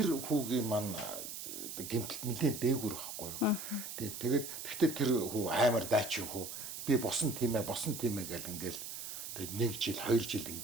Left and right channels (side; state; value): right; noise; hiss, 8 dB below the sound